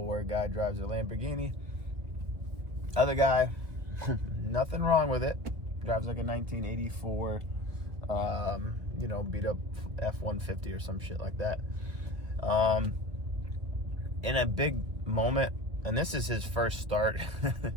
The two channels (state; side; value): late; left; 2.2 ms